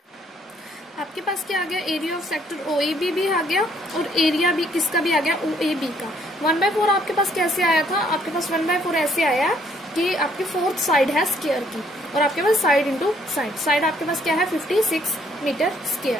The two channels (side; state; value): both; normal; correlation 0.66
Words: आपके पास क्या आ गया, एरिया ऑफ सेक्टर OAB भी आ गया और एरिया भी किसका भी आ गया, OAB का। 1/4 आपके पास कैसे आया था, आपके पास 1/4 ऐसे आया कि आपकी 4th साइड है स्क्वायर की और आपके पास साइड इंटू साइड, साइड आपके पास क्या है, 56 मीटर स्क्वायर।